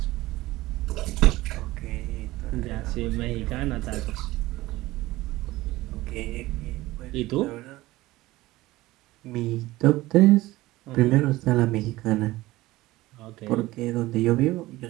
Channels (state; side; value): quieter; left; 18.3 dB